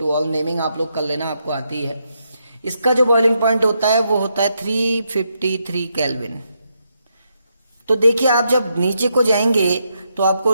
ऑल नेमिंग आप लोग कर लेना, आपको आती है। इसका जो बॉइलिंग पॉइंट होता है वो होता है 353 केल्विन। तो देखिए आप जब नीचे को जाएंगे तो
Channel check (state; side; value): inverted; both; correlation -0.81